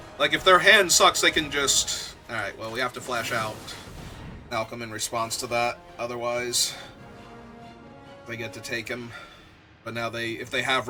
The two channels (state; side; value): identical; both; correlation 1.00